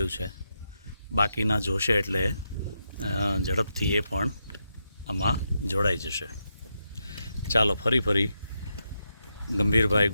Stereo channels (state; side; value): inverted; both; correlation -0.84